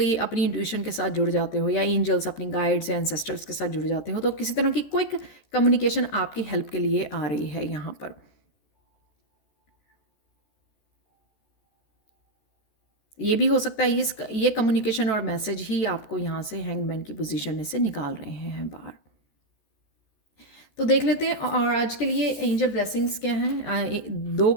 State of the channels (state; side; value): late; right; 14 ms